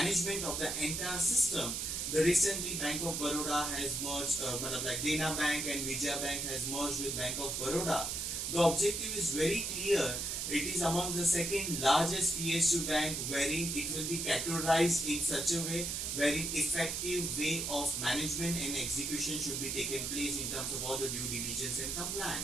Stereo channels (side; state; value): right; noise; hiss, 2 dB below the sound